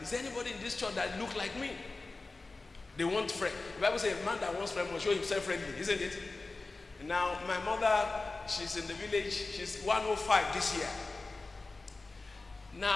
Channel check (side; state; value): right; quieter; 3.5 dB